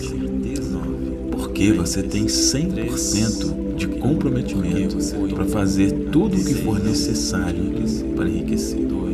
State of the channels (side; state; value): both; identical; correlation 1.00